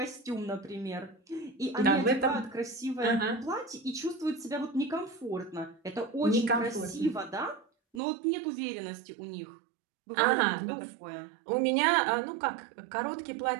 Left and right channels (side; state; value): left; drops out; at 8.0 s